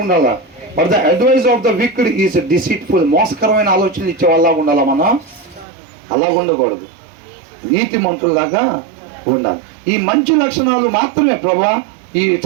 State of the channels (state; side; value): drops out; left; at 5.7 s